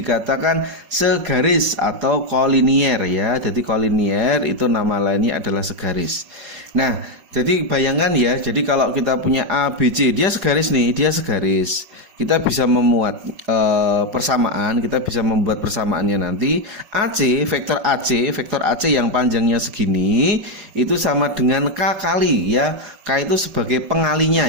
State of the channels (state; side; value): late; left; 5.2 ms